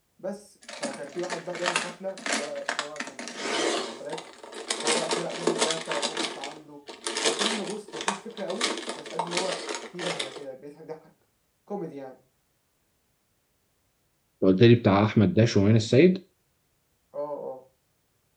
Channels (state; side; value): identical; both; correlation 1.00